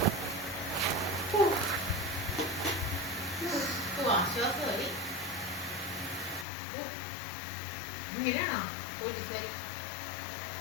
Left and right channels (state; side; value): drops out; right; at 6.5 s